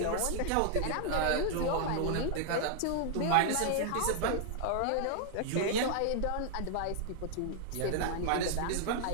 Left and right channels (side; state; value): both; different; correlation 0.00